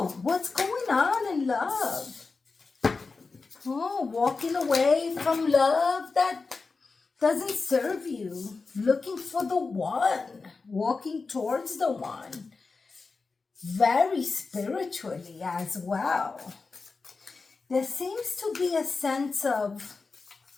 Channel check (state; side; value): quieter; right; 4.2 dB